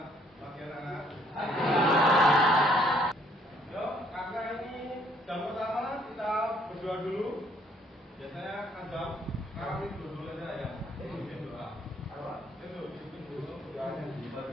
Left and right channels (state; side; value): normal; both; correlation 0.64